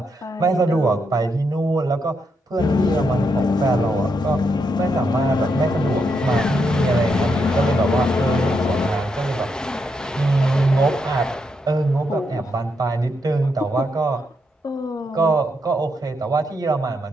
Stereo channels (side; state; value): both; normal; correlation 0.80